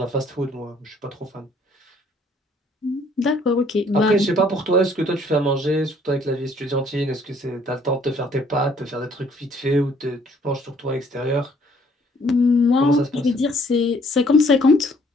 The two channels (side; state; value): both; normal; correlation 0.61